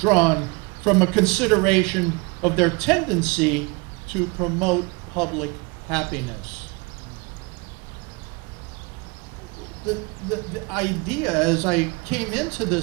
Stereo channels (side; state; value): left; quieter; 28.7 dB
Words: from a consideration of their tendency to promote public happiness. The idea as I came into